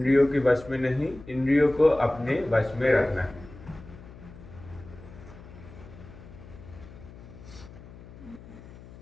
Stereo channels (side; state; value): left; noise; hum, 18 dB below the sound